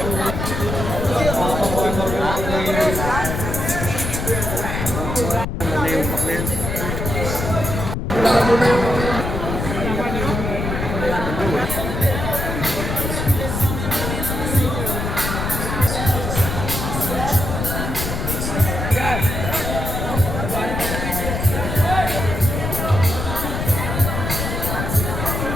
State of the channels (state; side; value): noise; left; rumble, 3 dB below the sound